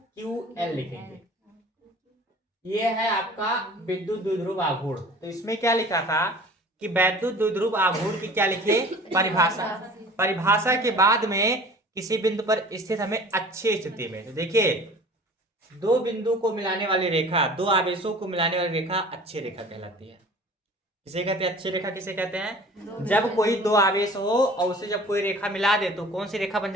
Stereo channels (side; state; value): both; normal; correlation 0.45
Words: लिखेंगे। ये है आपका विद्युत द्विध्रुव आघूर्ण। तो इसमें क्या लिखा था कि वैद्युत द्विध्रुव आघूर्ण की क्या लिखे परिभाषा। परिभाषा के बाद में किसी बिंदु पर स्थित हमें अच्छी स्थिति में, तो देखिए दो बिंदु को मिलाने वाली रेखा, दो आवेशों को मिलाने वाली रेखा अच्छी रेखा कहलाती है। किसे कहते हैं अच्छी रेखा, किसे कहते हैं जब कोई दो आवेश हो और उसे जब कोई रेखा मिला दे तो कौन सी रेखा बन